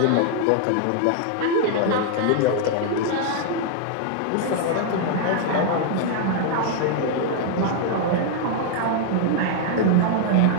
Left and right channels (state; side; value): different; both; correlation -0.01